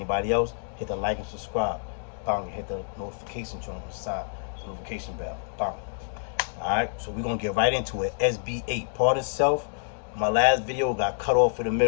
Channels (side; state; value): right; silent; digital silence